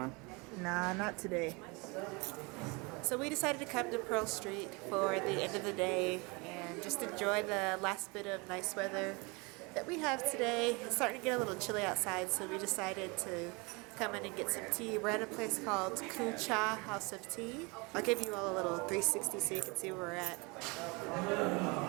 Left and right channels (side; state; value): left; quieter; 28.1 dB